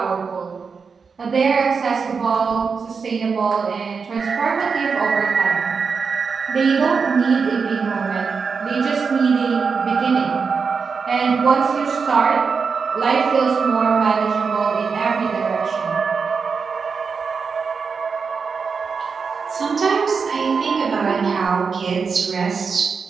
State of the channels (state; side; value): quieter; left; 5.4 dB